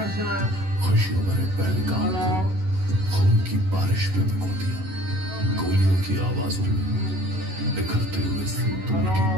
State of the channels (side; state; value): left; late; 11 ms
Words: खुशियों भरे पहलगाम खून की बारिश पे भिगो दिया। गोलियों की आवाजों में बिखरते हुए सिंदूर की